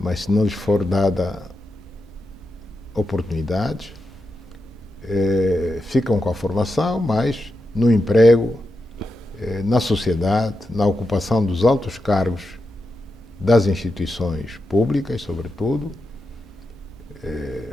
se não lhes for dada oportunidades, ficam com a formação, mas no emprego, na sociedade, na ocupação dos altos cargos das instituições públicas, sobretudo,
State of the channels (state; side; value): normal; both; correlation 0.88